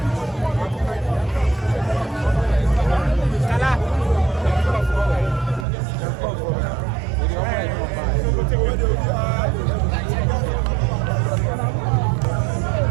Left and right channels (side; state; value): left; drops out; at 5.7 s